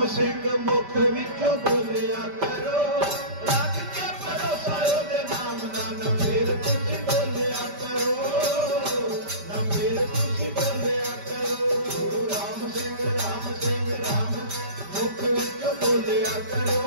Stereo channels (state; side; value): late; left; 5.1 ms